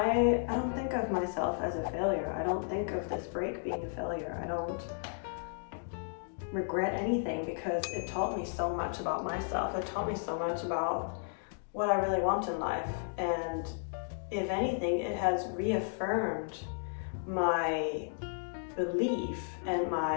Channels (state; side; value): silent; right; digital silence